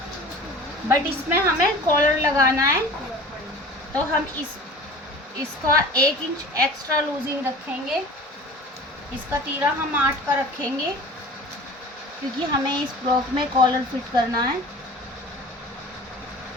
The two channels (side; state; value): both; normal; correlation 0.41